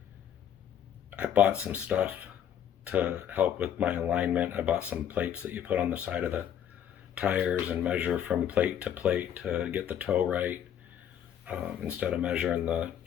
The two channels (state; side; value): quieter; right; 9.5 dB